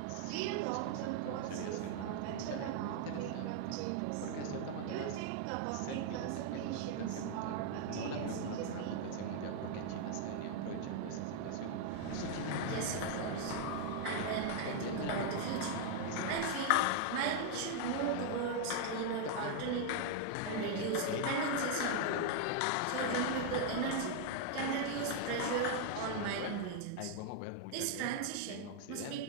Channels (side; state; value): both; different; correlation 0.00